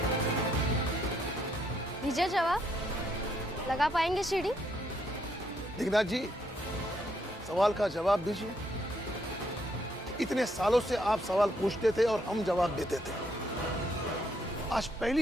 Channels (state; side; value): normal; both; correlation 0.73